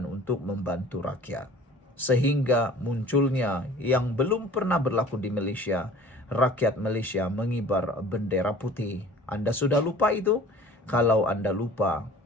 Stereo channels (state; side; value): normal; both; correlation 0.46